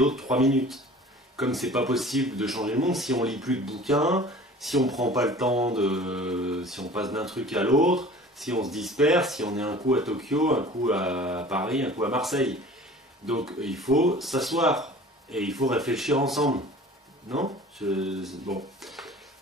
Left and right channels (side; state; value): both; normal; correlation 0.44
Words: de 3 minutes. Comme c'est pas possible de changer le monde si on lit plus de bouquins, si on prend pas le temps si on passe d'un truc à l'autre, si on se disperse, si on est un coup à Tokyo, un coup à Paris, un coup à Marseille. Donc il faut s'asseoir et il faut réfléchir ensemble. Non? Bon.